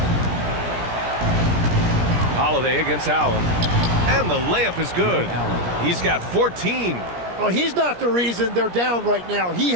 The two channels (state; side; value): late; left; 17 ms